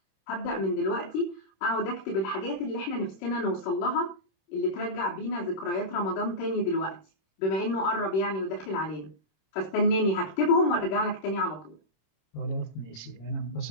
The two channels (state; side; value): late; right; 26 ms